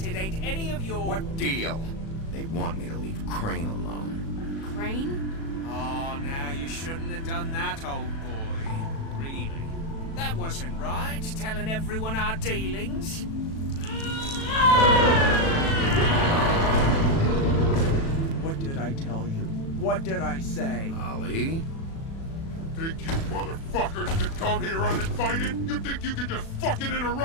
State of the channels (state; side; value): late; right; 36 ms